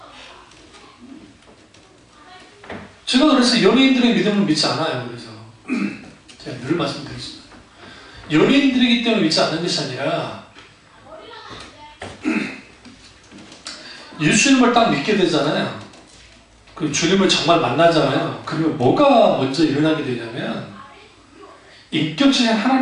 제가 그래서 연예인들의 믿음을 믿지 않아요. 그래서 제가 늘 말씀드리겠습니다. 연예인들이기 때문에 믿지 않는 것이 아니라, 예수님을 딱 믿게 되잖아요. 그 주님을 정말 만나잖아요. 그러면 뭐가 먼저 일어나게 되냐면, 인격적인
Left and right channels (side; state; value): both; identical; correlation 1.00